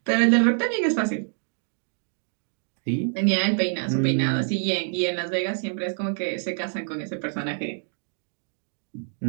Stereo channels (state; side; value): silent; left; digital silence